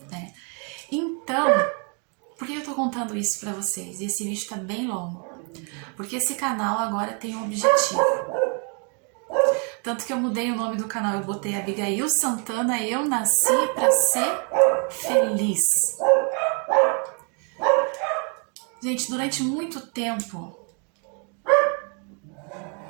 Né? Então, por que eu estou contando isso para vocês? E esse vídeo está bem longo. Porque esse canal agora tem um objetivo. Tanto que eu mudei o nome do canal, eu botei Abigail Santana, eu nasci para ser feliz. Gente, durante muito tempo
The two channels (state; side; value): quieter; left; 37.8 dB